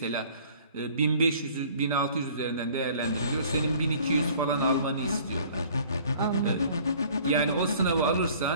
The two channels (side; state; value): both; inverted; correlation -0.52